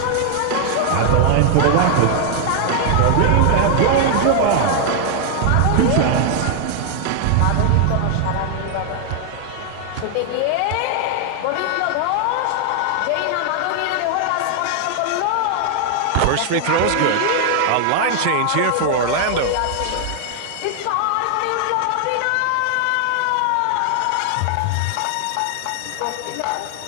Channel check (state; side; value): different; both; correlation 0.00